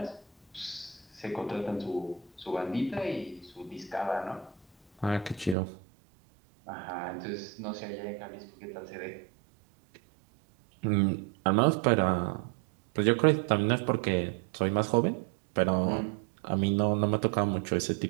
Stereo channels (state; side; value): drops out; left; at 5.6 s